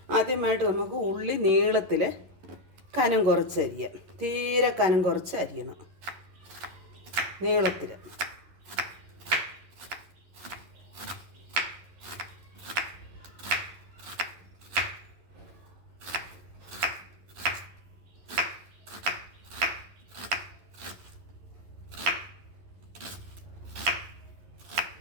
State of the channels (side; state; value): left; late; 11 ms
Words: ആദ്യമായിട്ട് നമുക്ക് ഉള്ളി നീളത്തിൽ കനം കുറച്ച് അരിയാം. തീരെ കനം കുറച്ച് അരിയണം, നീളത്തിൽ.